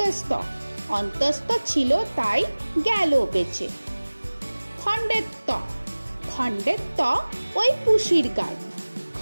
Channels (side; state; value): both; inverted; correlation -1.00